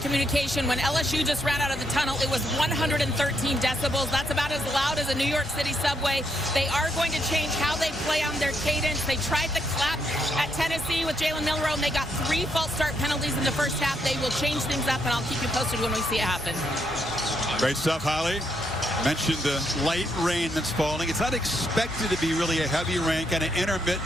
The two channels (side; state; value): both; normal; correlation 0.77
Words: When LSU just ran out of the tunnel, it was 113 decibels. That's about as loud as a New York City subway. They are going to change how they play on their cadence. They tried the clap at Tennessee with Jalen Milroe, and they got 3 false start penalties in the first half. They will change things up, and I'll keep you posted when we see it happen. Great stuff, Holly. Mentioned the light rain that's falling. It's not expected to be really a heavy rain, kind of intermittent